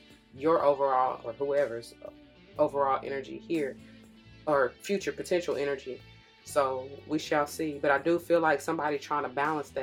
your overall, or whoever's overall energy here, or future potential energy. So we shall see. But I do feel like somebody trying to balance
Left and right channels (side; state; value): both; identical; correlation 1.00